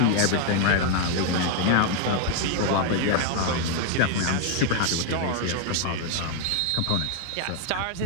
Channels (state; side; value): different; both; correlation 0.00